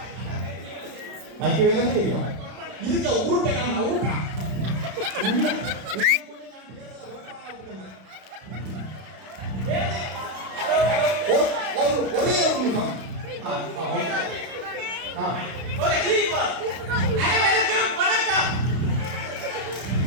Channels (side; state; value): left; late; 32 ms